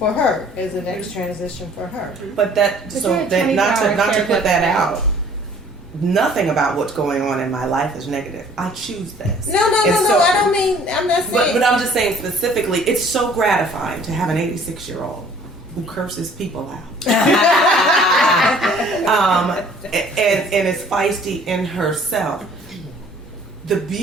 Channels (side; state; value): both; normal; correlation 0.55